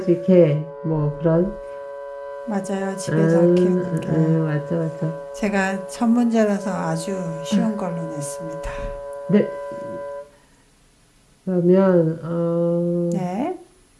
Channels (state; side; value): identical; both; correlation 1.00